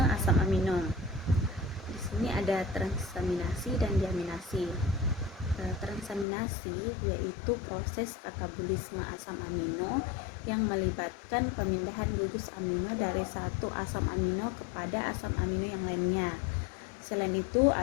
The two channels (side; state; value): right; drops out; at 6.2 s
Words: asam amino. Di sini ada transaminasi dan diaminasi. Transaminasi yaitu proses katabolisme asam amino yang melibatkan pemindahan gugus amino dari satu asam amino kepada asam amino yang lainnya. Selain itu